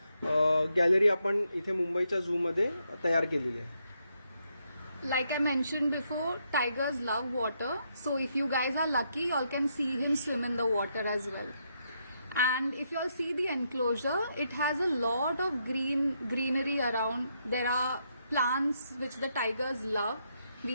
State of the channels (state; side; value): inverted; both; correlation -0.78